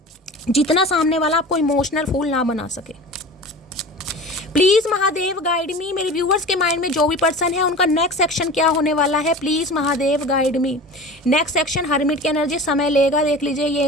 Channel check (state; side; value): normal; both; correlation 0.35